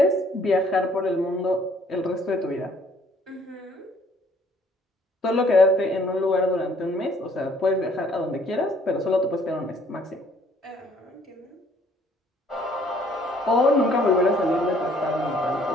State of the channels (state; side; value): normal; both; correlation 0.61